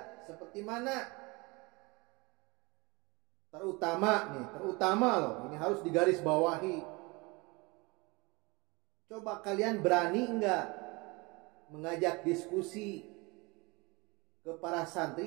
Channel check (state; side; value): quieter; left; 26.1 dB